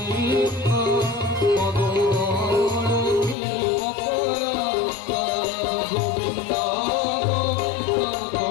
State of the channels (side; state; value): right; drops out; at 3.4 s